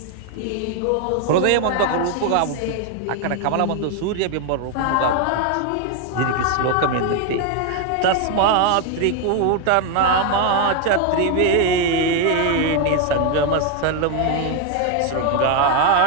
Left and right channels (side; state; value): both; different; correlation 0.01